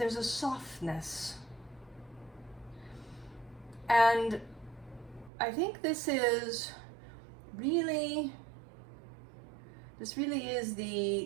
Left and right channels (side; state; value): left; drops out; at 5.3 s